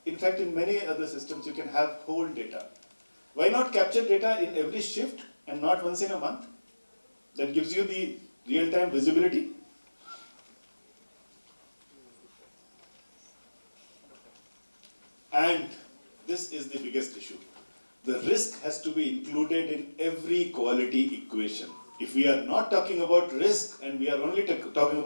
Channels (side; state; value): both; inverted; correlation -1.00